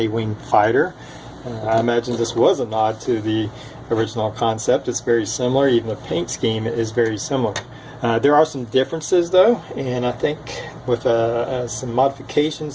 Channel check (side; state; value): both; identical; correlation 1.00